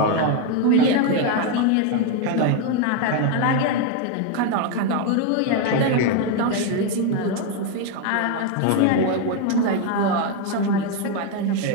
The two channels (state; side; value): different; both; correlation 0.01